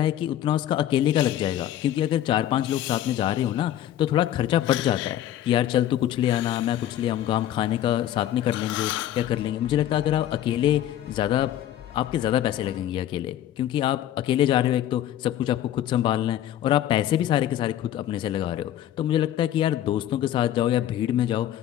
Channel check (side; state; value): right; quieter; 12.0 dB